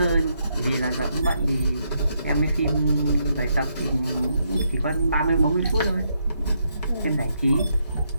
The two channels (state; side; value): inverted; both; correlation -0.78